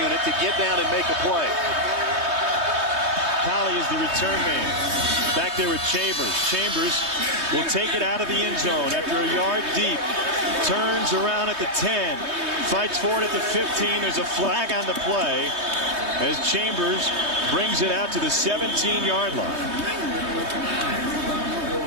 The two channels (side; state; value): left; late; 3.2 ms